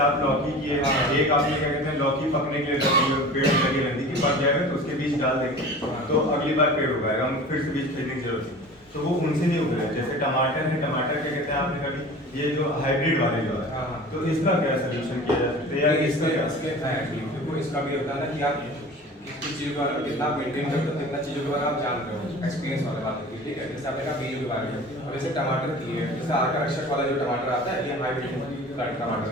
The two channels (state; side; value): normal; both; correlation 0.39